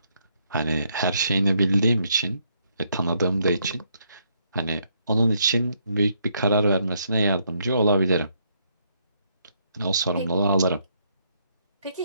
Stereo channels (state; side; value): inverted; both; correlation -0.73